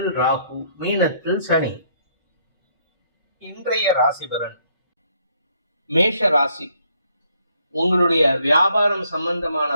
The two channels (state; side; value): inverted; both; correlation -0.69